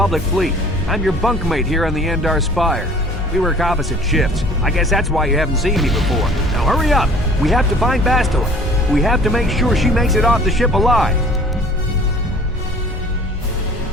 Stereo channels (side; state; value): both; normal; correlation 0.50